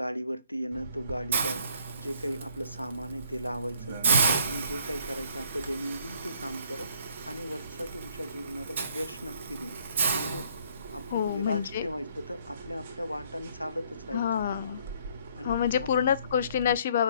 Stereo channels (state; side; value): inverted; both; correlation -0.63